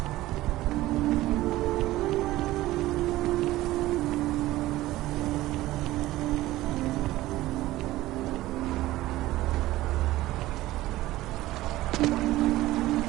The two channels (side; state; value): left; quieter; 16.7 dB